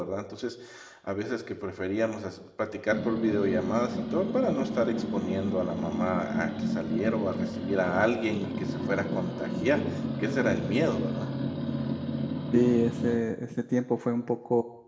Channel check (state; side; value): identical; both; correlation 1.00